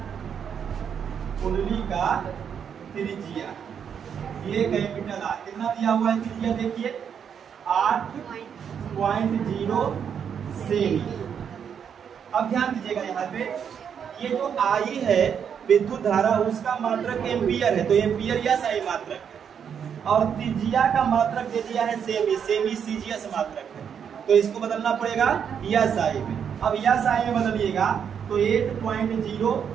कुंडली का त्रिज्या ये कैपिटल R कितना दिया हुआ है त्रिज्या? देखिए 8.0 सेमी। अब ध्यान दीजिएगा, यहाँ पे ये जो I है विद्युत धारा, उसका मात्रक एम्पियर है, तो एम्पियर या सही मात्रक है, और त्रिज्या का मात्रक दे दिया है सेमी, सेमी सीजीएस मात्रक है, तो इसको बदलना पड़ेगा या साई में। अब या साई में बदलिएगा तो 8.0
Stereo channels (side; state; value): left; quieter; 7.7 dB